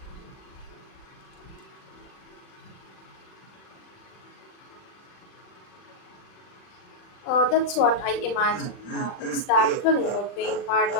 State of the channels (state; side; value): late; right; 39 ms